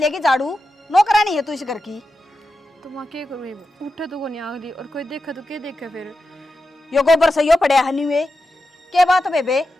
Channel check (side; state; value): both; normal; correlation 0.90